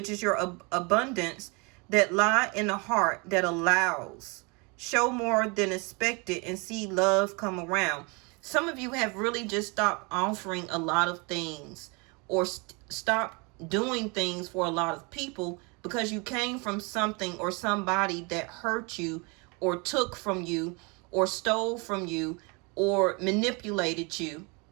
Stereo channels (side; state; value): left; quieter; 30.1 dB